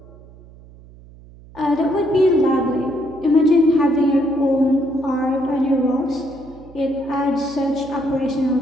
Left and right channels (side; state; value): right; noise; hum, 22 dB below the sound